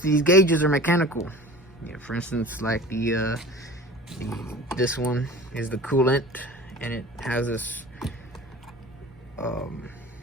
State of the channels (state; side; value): normal; both; correlation 0.39